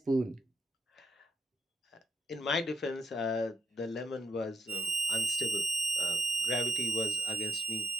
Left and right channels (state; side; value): normal; both; correlation 0.74